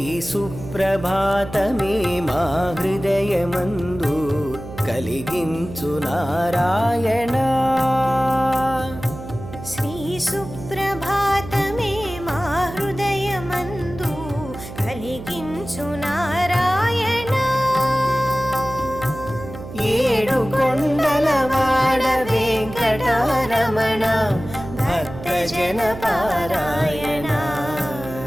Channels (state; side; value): noise; right; hum, 12 dB below the sound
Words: సుప్రభాతమే మా హృదయమందు కలిగించు నారాయణ. శ్రీ సుప్రభాతమే మా హృదయమందు కలిగించు నారాయణ. ఏడు కొండలవాడ వెంకటరమణ భక్తజన పారాయణ.